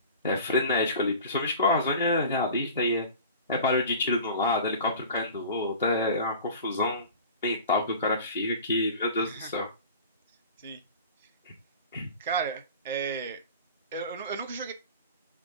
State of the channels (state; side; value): inverted; both; correlation -0.39